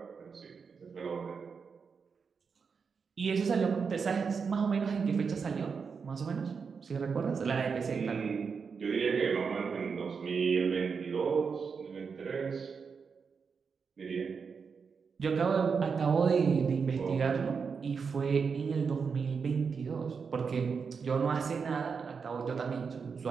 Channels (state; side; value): quieter; left; 5.7 dB